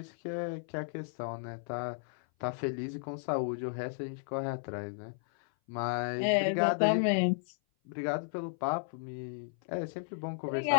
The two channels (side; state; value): right; silent; 55 dB below the other